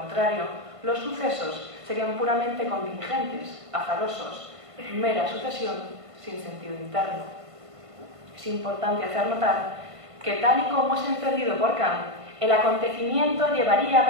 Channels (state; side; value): late; left; 1.5 ms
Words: los sucesos serían puramente contingentes, azarosos, mera sucesión sin sentido interno. Es importante hacer notar que, tal y como es entendido por Kant, el acontecimiento llevaría